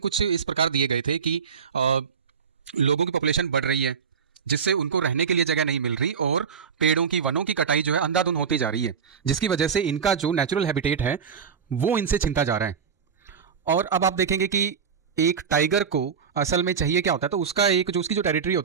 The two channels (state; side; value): quieter; left; 6.5 dB